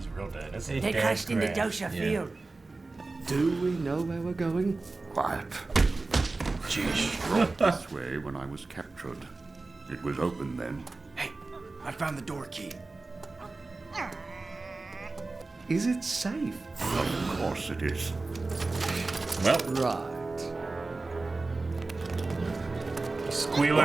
real dead. That's They crashed into Dosha Field. Do we know where we're going? Quiet. Brought this way when I was captured. It was open then. Hey, I found the door key. Is it safe? Of course it is. Well, Right. Squealer.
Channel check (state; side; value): quieter; left; 3.5 dB